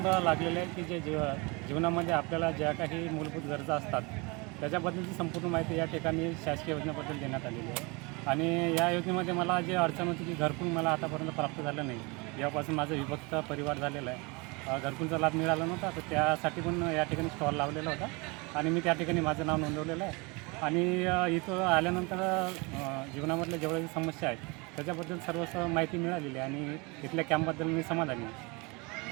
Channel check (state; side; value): quieter; left; 27.8 dB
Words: लागलेले आहे की जे जीवनामध्ये आपल्याला ज्या काही मूलभूत गरजा असतात त्याच्याबद्दलची संपूर्ण माहिती या ठिकाणी शासकीय योजनेबद्दल देण्यात आलेली आहे. आणि या योजनेमध्ये मला जे अडचण होती की घरकुल मला आतापर्यंत प्राप्त झालं नाही. यापासून माझं विभक्त परिवार झालेला आहे. घरकुलचा लाभ मिळाला नव्हता, तर त्यासाठी पण या ठिकाणी स्टॉल लावलेला होता आणि मी त्या ठिकाणी माझं नाव नोंदवलेलं आहे. आणि इथं आल्यानंतर जीवनामधल्या जेवढ्या समस्या आहेत त्याच्याबद्दल सर्व माहिती मिळालेली आहे आणि इथल्या कॅम्पबद्दल मी समाधानी